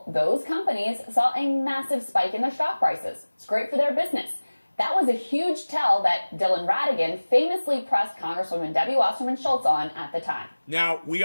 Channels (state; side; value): inverted; both; correlation -1.00